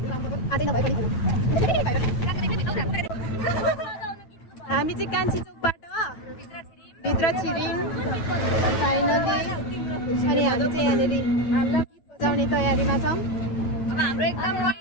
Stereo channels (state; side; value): late; right; 9.1 ms